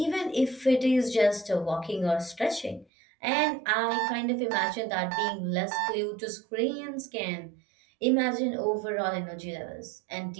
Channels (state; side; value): drops out; left; at 2.9 s